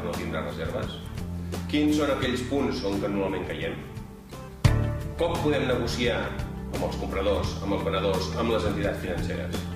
tindre reserves, quins són aquells punts on normalment caiem, com podem negociar amb els compradors, amb els venedors, amb les entitats financeres.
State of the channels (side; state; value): both; identical; correlation 1.00